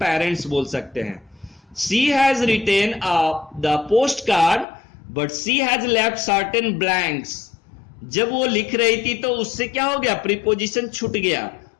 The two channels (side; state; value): right; drops out; at 4.7 s